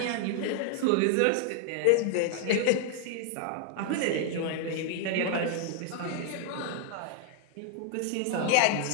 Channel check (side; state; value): both; different; correlation -0.01